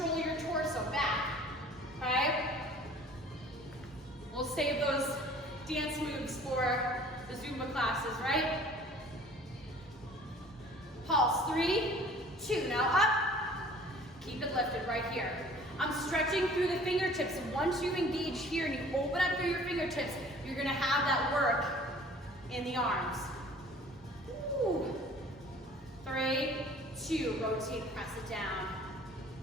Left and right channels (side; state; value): both; normal; correlation 0.50